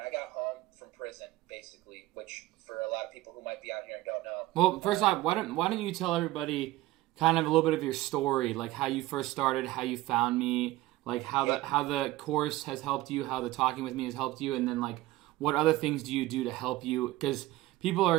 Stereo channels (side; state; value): left; quieter; 17.3 dB